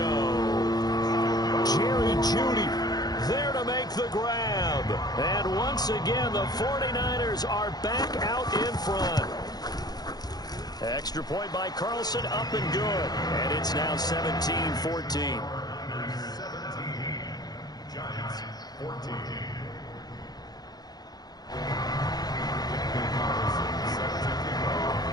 Jerry Jeudy there to make the grab. And once again, the 49ers are back out in front. Extra point by Carlson, up and good. And it's now 17-14. 17. Giants, 14.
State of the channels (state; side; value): late; right; 0.19 ms